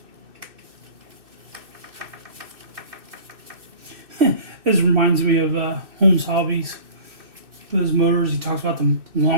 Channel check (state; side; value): late; left; 2.6 ms